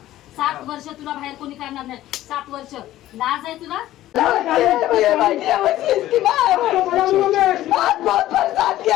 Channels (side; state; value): right; quieter; 14.4 dB